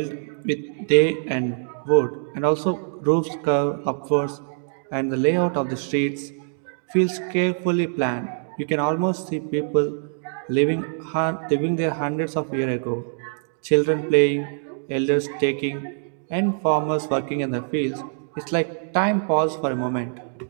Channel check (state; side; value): silent; left; digital silence